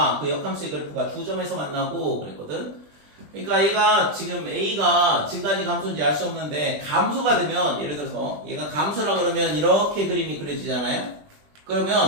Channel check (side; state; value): left; late; 20 ms